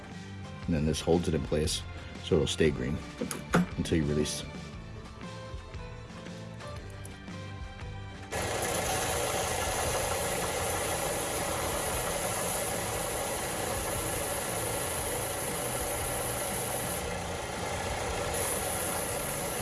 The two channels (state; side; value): identical; both; correlation 1.00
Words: And then this holds it in place so it'll stay green until you release.